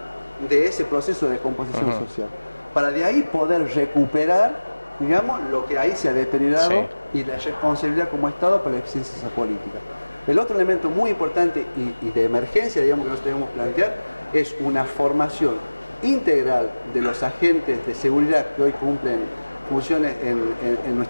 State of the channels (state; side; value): inverted; both; correlation -1.00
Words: de ese proceso de descomposición social, para de ahí poder recuperar, digamos, lo que ahí se ha deteriorado y la responsabilidad como Estado para la eficiencia de esa política. El otro elemento muy importante y de emergencia, digamos, que nosotros debemos plantear, es una formación integral de los agentes de seguridad que hoy cumplen funciones en